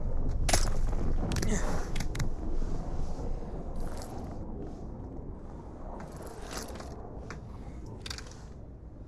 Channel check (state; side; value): identical; both; correlation 1.00